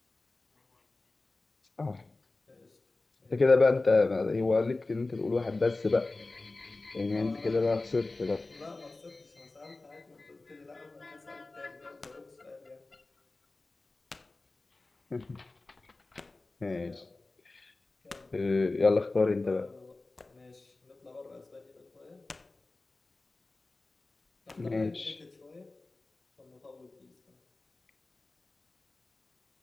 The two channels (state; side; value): quieter; right; 3.3 dB